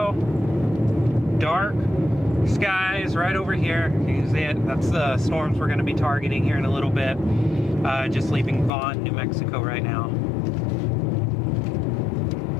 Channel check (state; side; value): drops out; right; at 8.7 s